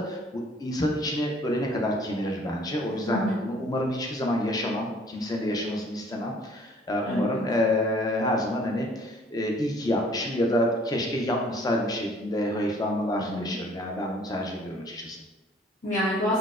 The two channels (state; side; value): normal; both; correlation 0.57